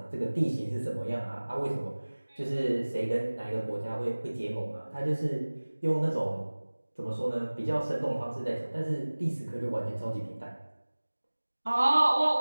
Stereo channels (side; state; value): both; inverted; correlation -1.00